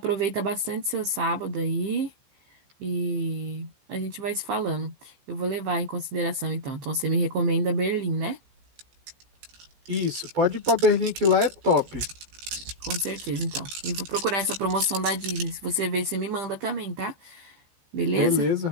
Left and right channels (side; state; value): left; late; 14 ms